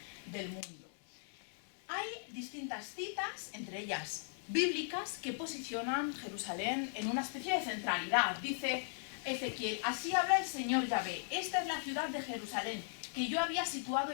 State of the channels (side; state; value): right; silent; digital silence